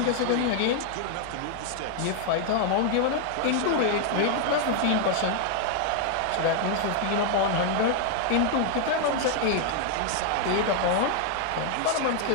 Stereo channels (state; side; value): different; both; correlation 0.00